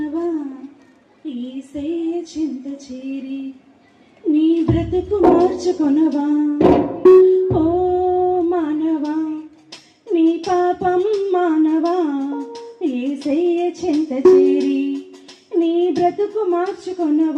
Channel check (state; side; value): identical; both; correlation 1.00